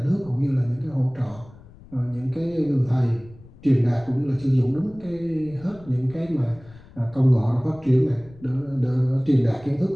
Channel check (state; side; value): noise; left; rumble, 22 dB below the sound